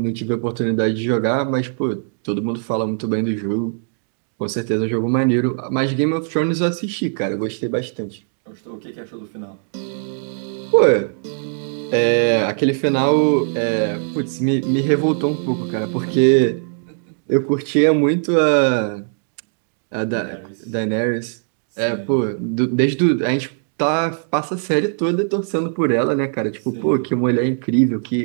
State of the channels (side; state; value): left; silent; digital silence